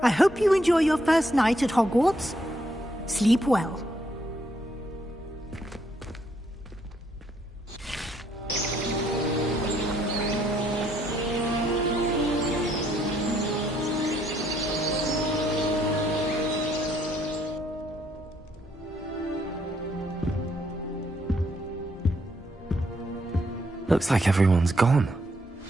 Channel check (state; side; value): normal; both; correlation 0.72